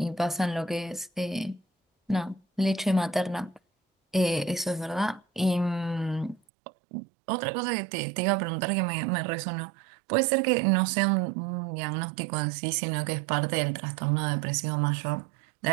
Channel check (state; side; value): drops out; left; at 6.4 s